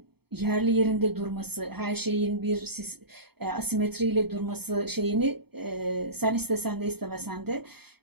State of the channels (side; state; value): left; late; 0.97 ms